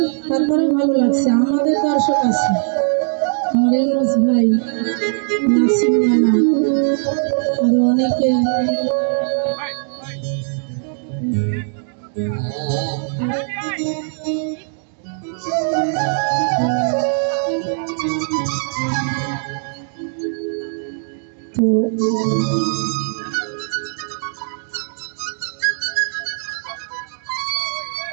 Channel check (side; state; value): left; silent; digital silence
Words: তারপরে ভালো লাগছে। আমাদের দর্শক আছে, আমার ইউনুস ভাই, নাসিম নানা, আরো অনেকে। তো